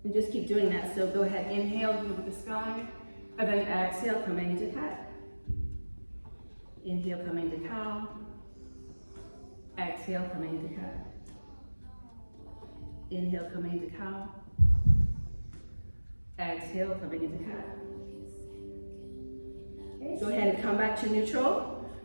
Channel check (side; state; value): both; inverted; correlation -1.00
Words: And just keep doing that. So go ahead, inhale, look at the sky. And then exhale, coming into cat. Inhale, coming to cow. Exhale, coming into cat. Inhale, coming into cow. Exhale, coming into cat. Okay, go ahead and come back to neutral.